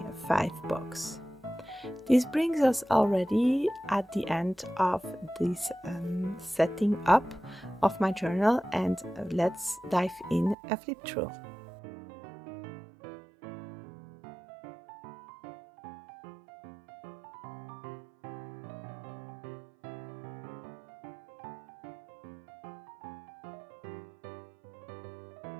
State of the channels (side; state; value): left; drops out; at 10.6 s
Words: 5 books. This brings us already at the end of this setting up of my journal, and let's dive in a flip through.